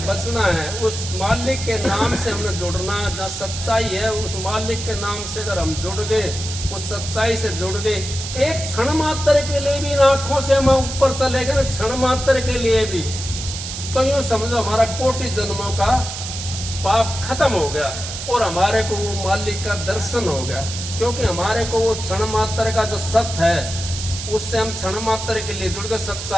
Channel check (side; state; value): right; noise; hiss, 7 dB below the sound